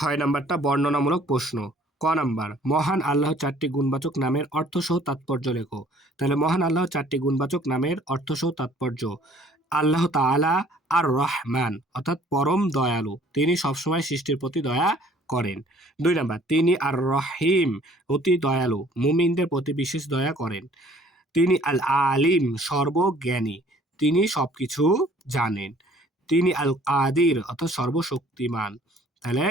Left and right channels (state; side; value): normal; both; correlation 0.56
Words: নাম্বারটা বর্ণনামূলক প্রশ্ন। ক নাম্বার মহান আল্লাহ চারটি গুণবাচক নামের অর্থসহ তাৎপর্য লেখো। তাহলে মহান আল্লাহ চারটি গুণবাচক নামের অর্থসহ তাৎপর্য, আল্লাহ তাআলা আর রহমান অর্থাৎ পরম দয়ালু, তিনি সবসময় সৃষ্টির প্রতি দয়া করেন। 2 নাম্বার তিনি আর রহিম অতি দয়ালু, মুমিনদের প্রতি বিশেষ দয়া করেন। তিনি আল আলিম সর্বজ্ঞানী, তিনি সবকিছু জানেন। তিনি আল কাদির অর্থাৎ সর্বশক্তিমান, তাহলে